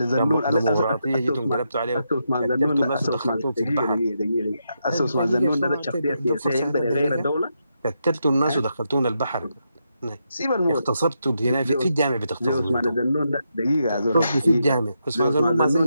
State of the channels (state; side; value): inverted; both; correlation -0.83